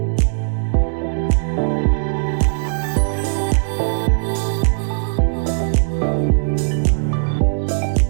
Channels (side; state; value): left; silent; digital silence